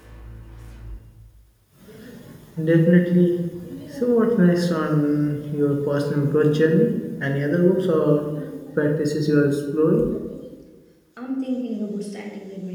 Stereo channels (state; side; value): identical; both; correlation 1.00